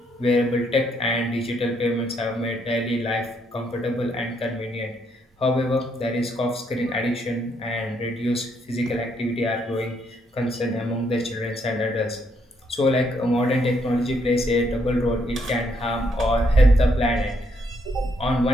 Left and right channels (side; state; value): both; normal; correlation 0.73